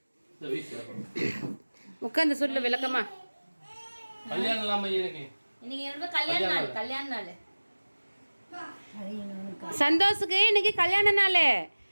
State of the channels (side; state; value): both; inverted; correlation -1.00